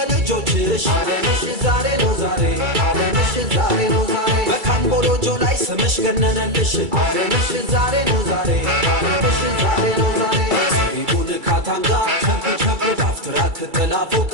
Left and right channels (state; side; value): late; left; 2.3 ms